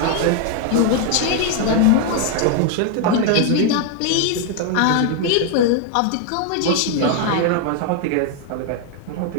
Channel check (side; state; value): both; different; correlation 0.00